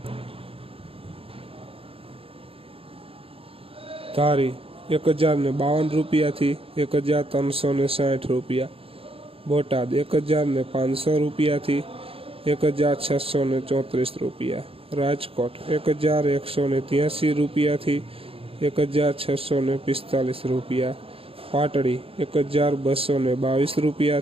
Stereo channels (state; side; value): late; left; 0.27 ms